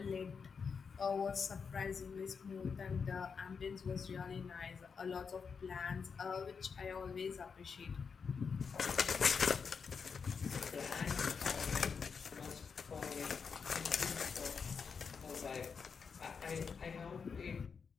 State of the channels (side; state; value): right; quieter; 5.8 dB